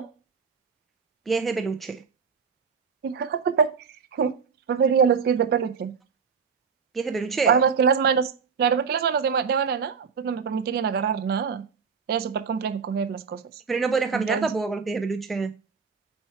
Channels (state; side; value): quieter; left; 5.9 dB